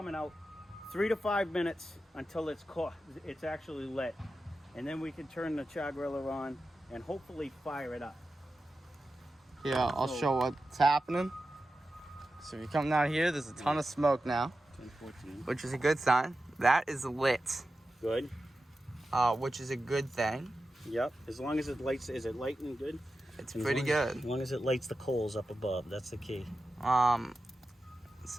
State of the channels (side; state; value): both; normal; correlation 0.92